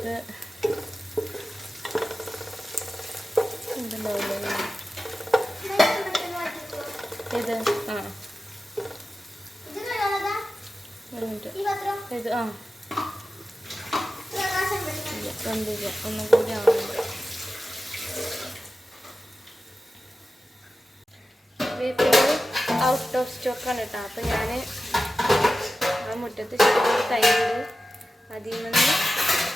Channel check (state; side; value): normal; both; correlation 0.93